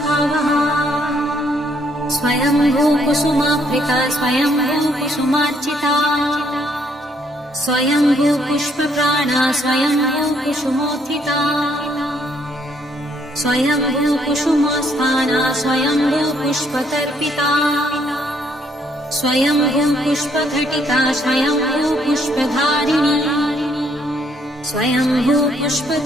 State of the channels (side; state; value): both; normal; correlation 0.69